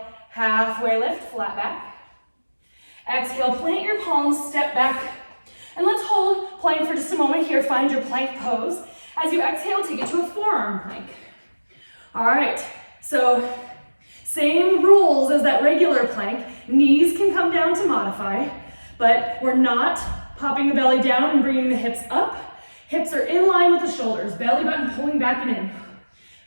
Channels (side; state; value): both; inverted; correlation -1.00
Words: halfway lift, flat back. Exhale, plant your palms, step back. And let's hold plank for just a moment here. Find your plank pose. As you exhale, take it to a forearm plank. All right, so same rules as that regular plank. Knees can come down to modify, but we're not popping the belly down and bringing the hips up. Hips are in line with the shoulders. Belly button pulling back and in.